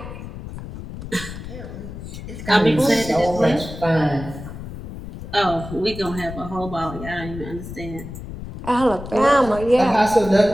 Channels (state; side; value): noise; left; rumble, 11 dB below the sound